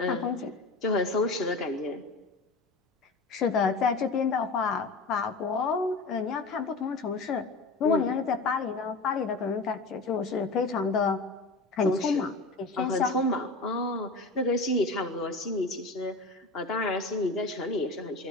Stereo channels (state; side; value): quieter; right; 3.5 dB